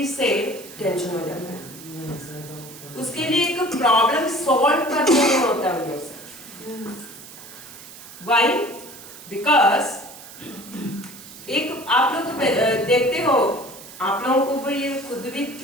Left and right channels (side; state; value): right; noise; hiss, 16 dB below the sound